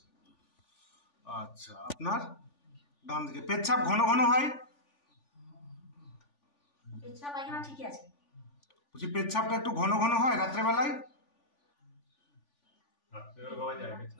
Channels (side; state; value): right; late; 3.5 ms